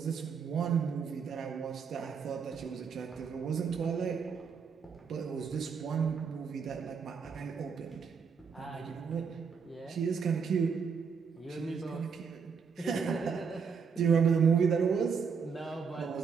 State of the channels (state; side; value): quieter; left; 6.0 dB